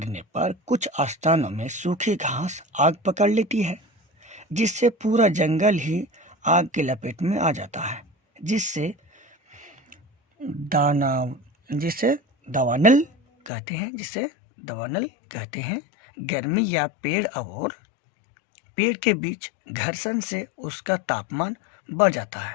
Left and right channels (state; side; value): drops out; right; at 13.5 s